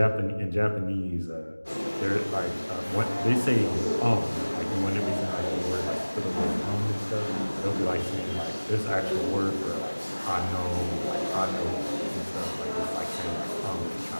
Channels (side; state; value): both; inverted; correlation -1.00